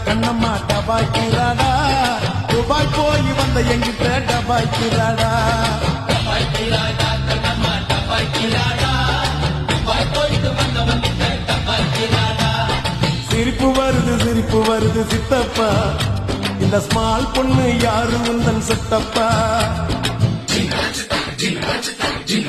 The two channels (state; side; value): identical; both; correlation 1.00